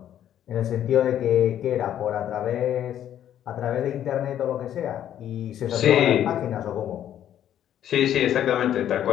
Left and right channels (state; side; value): quieter; right; 10.8 dB